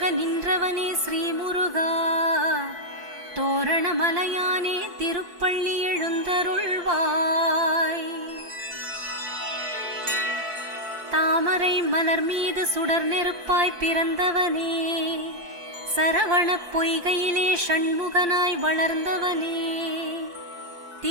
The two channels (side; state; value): left; late; 4.6 ms